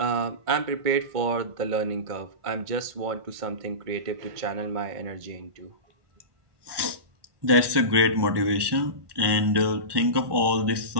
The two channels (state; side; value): late; left; 1.5 ms